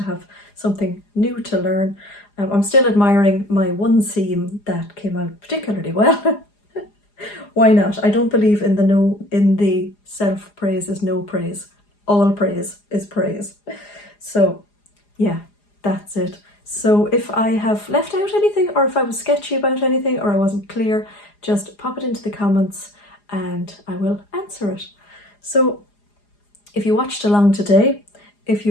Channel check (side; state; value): right; late; 4.9 ms